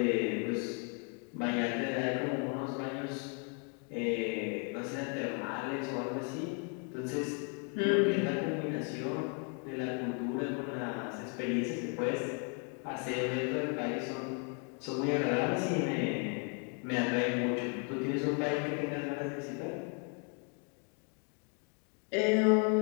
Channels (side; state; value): right; quieter; 37.2 dB